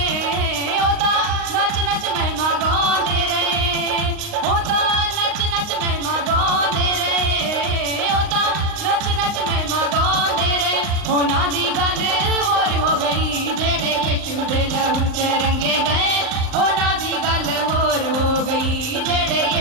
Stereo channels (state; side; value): late; left; 38 ms